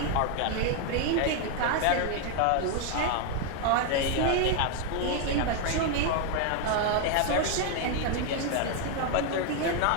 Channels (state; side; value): different; both; correlation 0.00